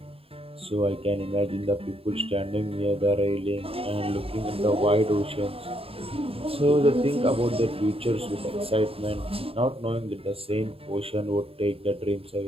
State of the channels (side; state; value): left; late; 0.27 ms